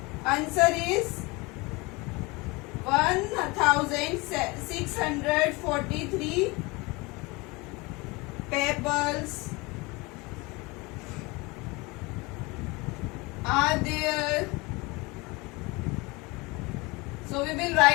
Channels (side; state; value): right; quieter; 25.3 dB